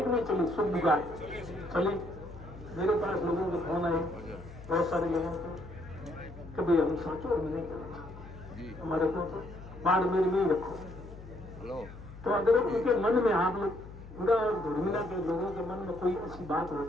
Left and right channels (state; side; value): noise; left; hum, 15 dB below the sound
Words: कि नहीं चली? सुखबुगाड़ चली। मेरे पास लोगों के फोन आए, बहुत सारे लोगों को, कभी हम साचोर में नहीं करेंगे, हमारे को तो बाढ़ मेरे में ही रखो। तो अगर उनके मन में, आप लोग पूरा धर्मिला के लोगों के मन में कोई ऐसी बात